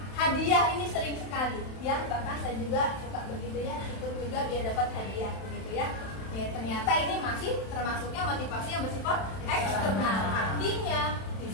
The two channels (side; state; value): right; late; 31 ms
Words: Hadiah ini sering sekali, ya, bahkan saya juga suka begitu ya, ikut juga biar dapat hadiah, begitu ya. Ternyata ini masih termasuknya motivasi yang bersifat eksternal. Artinya